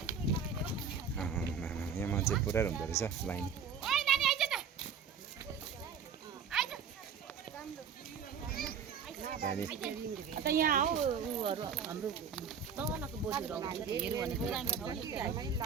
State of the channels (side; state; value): left; quieter; 6.7 dB